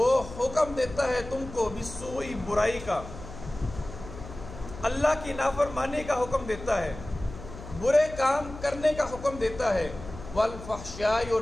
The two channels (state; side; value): noise; left; hum, 13 dB below the sound